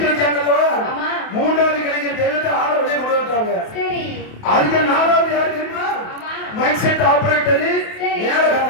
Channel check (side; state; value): right; late; 28 ms